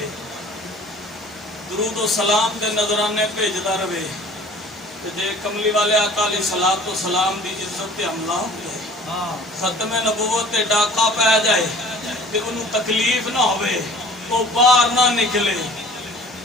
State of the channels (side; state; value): both; normal; correlation 0.47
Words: درود و سلام دے نظرانے بھیجدا رہے تے جے کملی والے آقا علیہ الصلوۃ والسلام دی عزت تے حملہ ہو جائے ختم نبوت تے ڈاکا پہ جائے تے انہوں تکلیف نہ ہوئے وہ باہر نہ نکلے